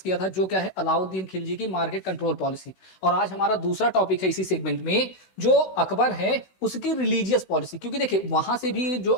किया था जो क्या है अलाउद्दीन खिलजी की मार्केट कंट्रोल पॉलिसी। और आज हमारा दूसरा टॉपिक है इसी सेगमेंट में, जो अकबर है उसकी रिलीजियस पॉलिसी। क्योंकि देखिए, वहां से भी जो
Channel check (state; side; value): late; right; 16 ms